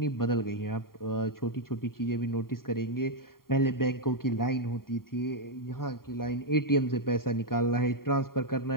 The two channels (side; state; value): right; late; 0.92 ms